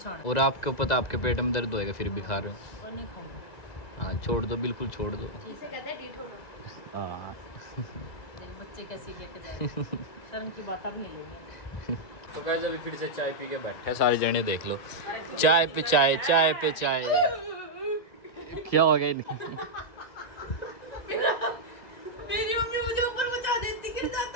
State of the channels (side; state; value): right; late; 1.9 ms